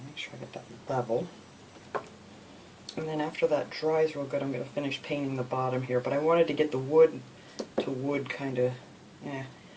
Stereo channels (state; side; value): identical; both; correlation 1.00